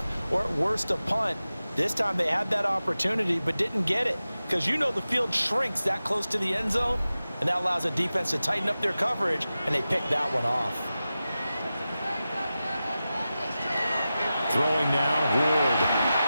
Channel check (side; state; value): both; inverted; correlation -0.94